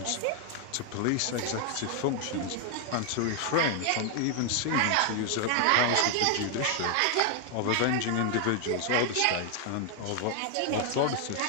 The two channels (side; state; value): both; different; correlation 0.00